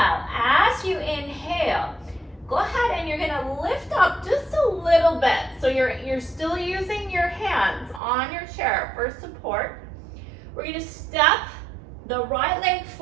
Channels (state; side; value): drops out; left; at 8.0 s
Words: as you inhale, go ahead and you're gonna lift up just a little bit. So you're still using your hands on your chair for support. We're gonna step the right leg